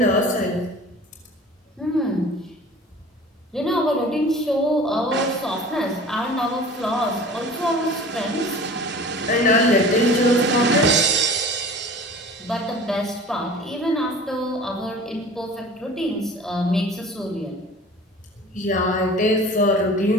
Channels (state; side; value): normal; both; correlation 0.42